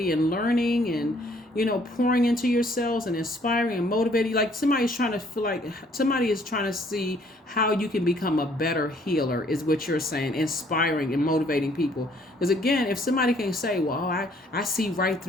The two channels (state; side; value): normal; both; correlation 0.62